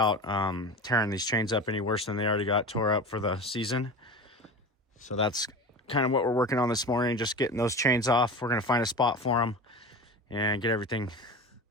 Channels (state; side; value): normal; both; correlation 0.30